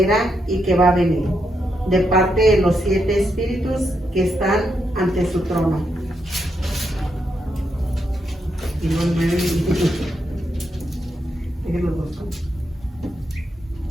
era y que va a venir, de parte de los 7 espíritus que están ante su trono. Y los 9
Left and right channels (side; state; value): both; normal; correlation 0.81